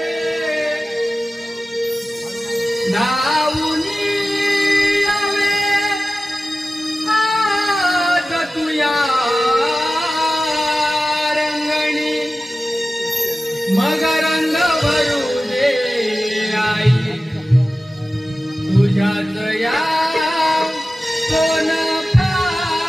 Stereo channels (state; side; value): normal; both; correlation 0.95